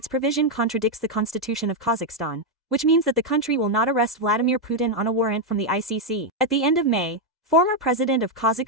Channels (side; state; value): both; normal; correlation 0.02